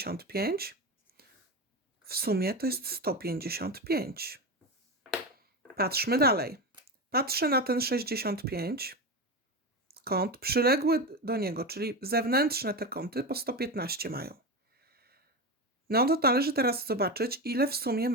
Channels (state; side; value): normal; both; correlation 0.19